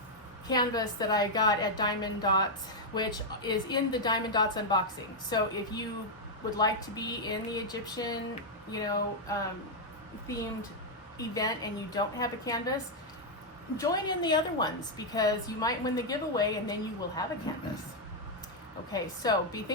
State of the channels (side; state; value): both; normal; correlation -0.02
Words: canvas that I got at Diamond Dots, which is in the Diamond Dots unboxing. So if you would like to be in the Egyptian, themed event and you don't have a canvas, join in the other ones because you might win the giveaway and then you will have a canvas. Okay, so be